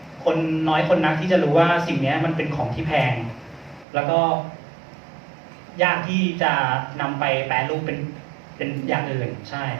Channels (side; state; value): left; drops out; at 3.9 s